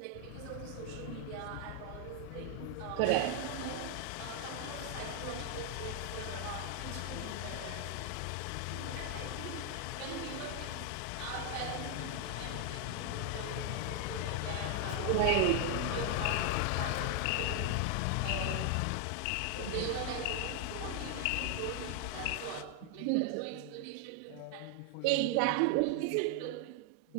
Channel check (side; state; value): both; different; correlation 0.00